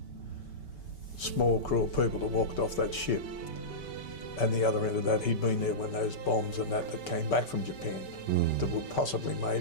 small crew of people that walked off that ship. And the other end of that, he'd been there when those bombs and that came back from Japan that were possibly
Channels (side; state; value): right; late; 5.2 ms